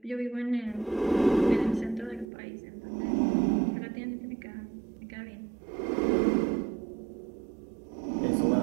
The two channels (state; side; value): drops out; left; at 2.2 s